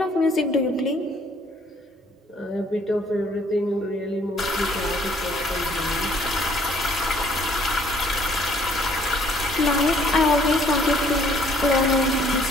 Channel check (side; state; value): both; normal; correlation 0.62